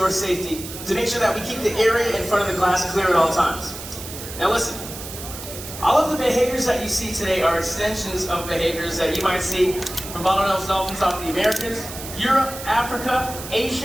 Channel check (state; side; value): noise; right; hiss, 11 dB below the sound